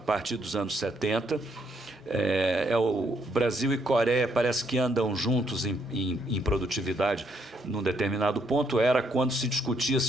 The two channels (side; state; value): both; normal; correlation 0.72